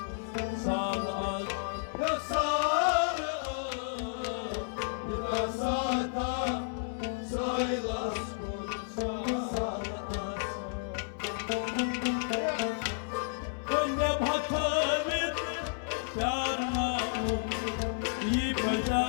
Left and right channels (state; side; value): silent; right; digital silence